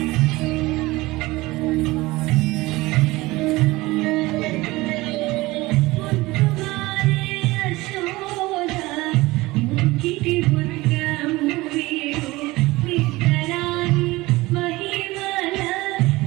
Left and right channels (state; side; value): quieter; left; 20.4 dB